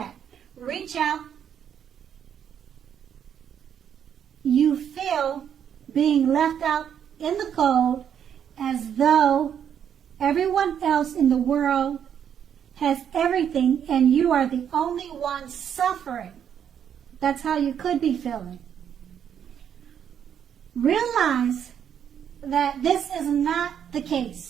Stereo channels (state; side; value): quieter; left; 8.7 dB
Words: Reach out. You feel being left out in the cold as though everyone else in the world has everything and you are the only one suffering. That's how you could be feeling. realize that this is not the